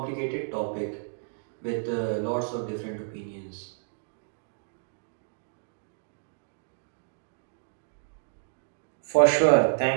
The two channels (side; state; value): left; silent; digital silence